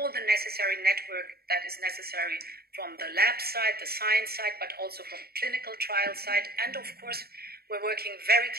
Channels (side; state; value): left; late; 0.45 ms